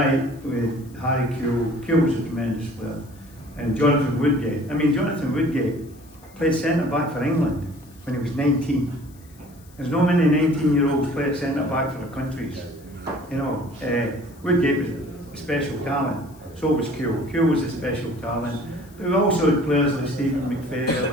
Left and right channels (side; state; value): left; noise; hiss, 27 dB below the sound